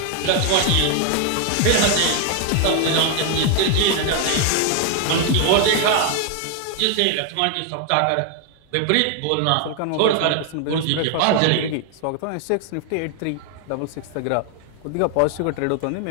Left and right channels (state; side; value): different; both; correlation 0.00